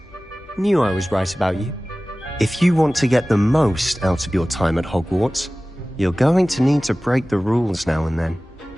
Knew I was right about you. If you want to get the most out of your time at Hogwarts, you're going to need to break the rules now and then.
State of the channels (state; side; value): normal; both; correlation 0.97